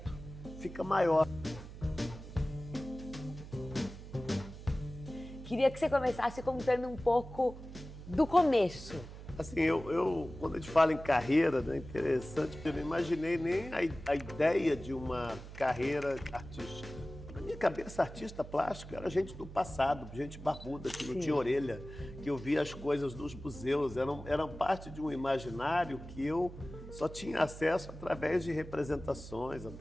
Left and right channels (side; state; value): right; noise; hum, 13 dB below the sound